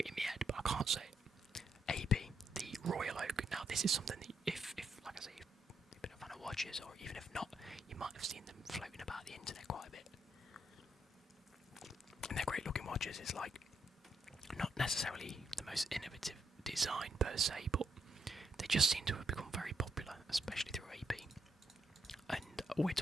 in my head, but I can't say it. AP, the Royal Oak. Now this is something that if like I say, you've been a fan of watches, or even if not, you might have seen them floating about the internet quite a bit. And they're great looking watches. It's like not necessarily the most innovative design per se, but they just seem to have become very popular, especially through AP. And we're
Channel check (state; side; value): normal; both; correlation 0.79